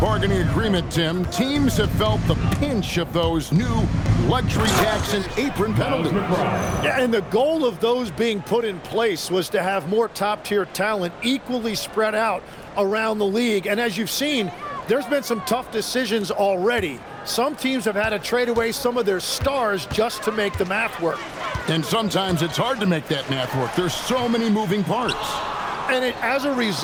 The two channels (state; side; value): identical; both; correlation 1.00